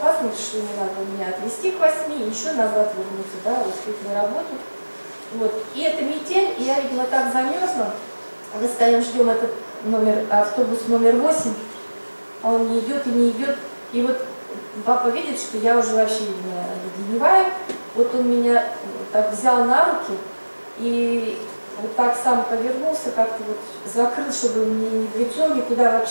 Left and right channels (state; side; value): inverted; both; correlation -1.00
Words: что не надо меня отвезти к 8 и еще назад вернуться, да, успеть на работу. Вот. И это метель, и я, видимо, так замерзла. Мы стоим, ждем этот автобус номер 8. А он не идет и не идет. И вот папа видит, что я уже вообще леденеваю. Вот он меня так взял на руки и вот так сам повернулся, как-то вот закрыл, чтобы мне не в лицо, никуда